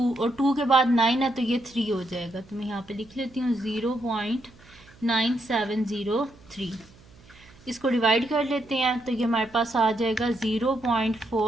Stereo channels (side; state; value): right; noise; hum, 25 dB below the sound